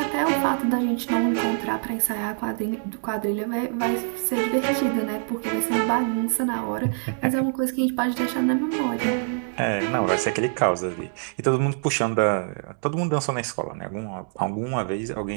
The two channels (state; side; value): silent; left; 57 dB below the other